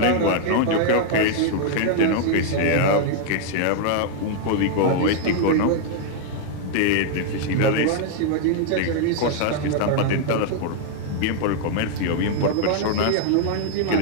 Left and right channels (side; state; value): both; different; correlation -0.01